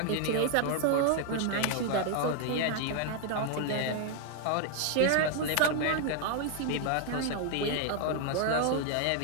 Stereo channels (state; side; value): different; both; correlation 0.00